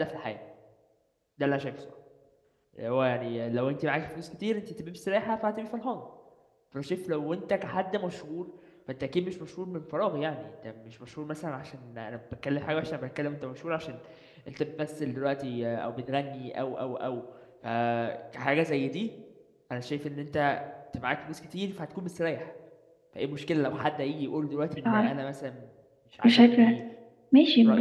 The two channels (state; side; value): identical; both; correlation 1.00